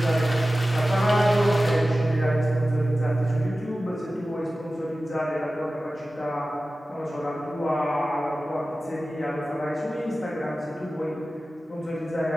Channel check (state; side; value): normal; both; correlation 0.95